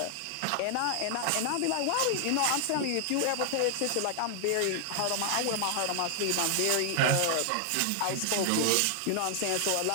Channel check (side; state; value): both; different; correlation 0.00